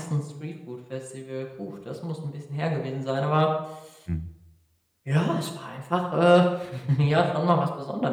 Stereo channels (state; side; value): identical; both; correlation 1.00